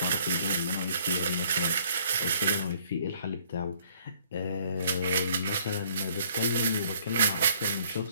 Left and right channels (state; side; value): inverted; both; correlation -0.61